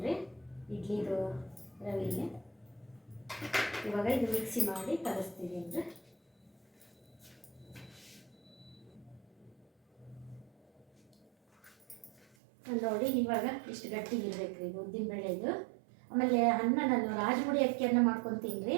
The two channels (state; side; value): drops out; left; at 12.2 s